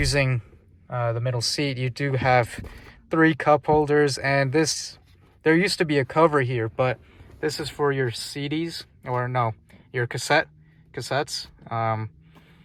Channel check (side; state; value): both; identical; correlation 1.00